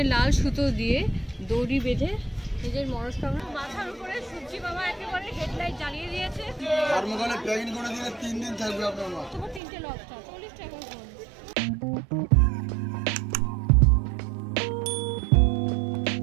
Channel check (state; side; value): drops out; left; at 9.6 s